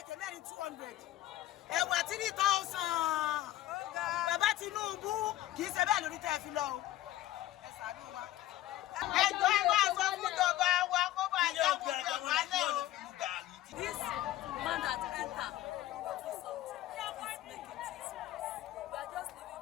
Ẹ̀wà 3,000. Bàbá Tinubu kì í ṣe bẹ́ẹ̀ lórí tẹ́ fi lọ o. Ẹ ṣàánú wa. Ẹjọ́ ẹ wá sọ fún ìjọba wa kó bá yá gbogbo ìwálẹ̀ o. This man that enter do something. He's making things worse. We are just living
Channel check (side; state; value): right; quieter; 14.7 dB